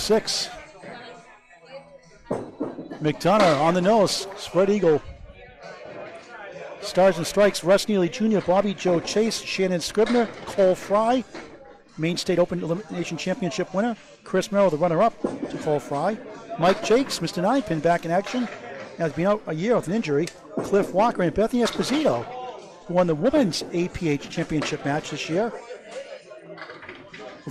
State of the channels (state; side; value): identical; both; correlation 1.00